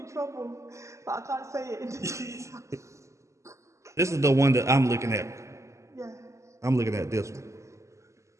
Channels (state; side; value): late; left; 0.14 ms